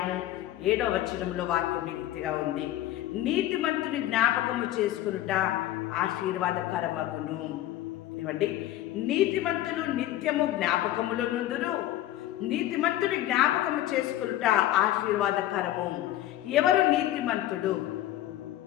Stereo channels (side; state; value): right; quieter; 13.9 dB